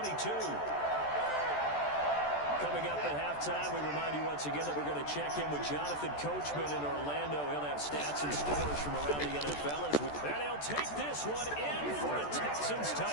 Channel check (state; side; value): late; right; 14 ms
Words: Coming up at halftime, we remind you once again that we're going to check in with Jonathan Coachman in Orlando. He'll have stats and scores from around the NFL. And he'll take this one in for a Texans